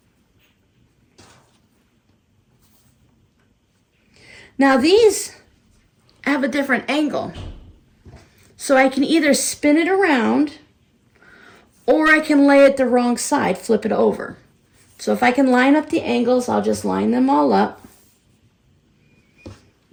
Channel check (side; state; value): both; identical; correlation 1.00